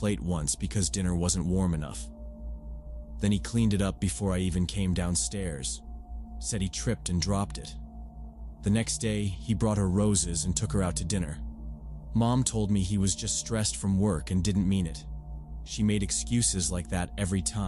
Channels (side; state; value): both; identical; correlation 1.00